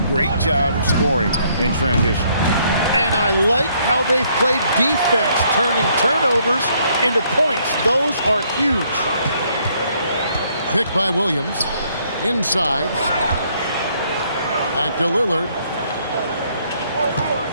Great job of scoring in transition. And I like how they've played defense, turning turnovers into points. Those are huge. Pick by Williams. Inside. Back to Lillard.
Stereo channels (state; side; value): inverted; both; correlation -0.68